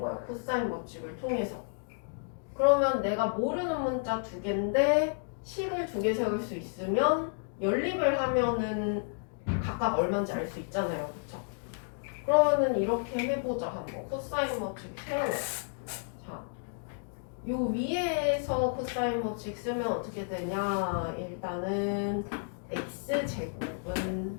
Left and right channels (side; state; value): right; silent; digital silence